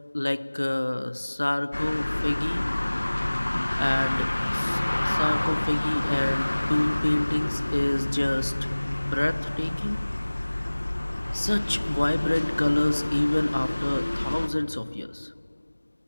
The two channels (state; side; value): inverted; both; correlation -1.00